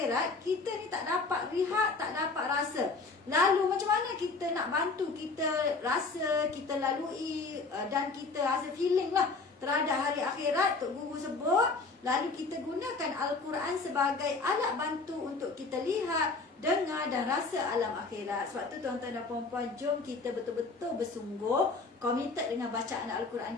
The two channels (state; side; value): quieter; right; 3.9 dB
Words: Kita ni tak dapat lihat, tak dapat rasa. Lalu macam mana kita nak bantu kita rasa, kita lalui dan kita rasa feeling lah terhadap hari akhirat. Tok Guru sebut, lalu kita gunakan Al-Quran sebagai alat bantu untuk kita lihat, dengar dan rasa alam akhirat. Sebab tu tuan-tuan dan puan-puan, jom kita betul-betul bersungguh komited dengan bacaan